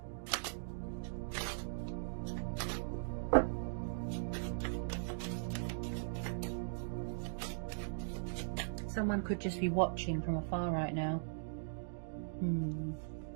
Someone could just be watching from afar right now.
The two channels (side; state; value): left; silent; digital silence